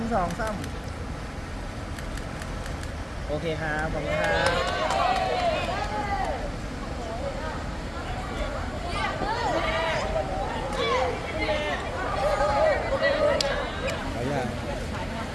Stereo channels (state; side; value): identical; both; correlation 1.00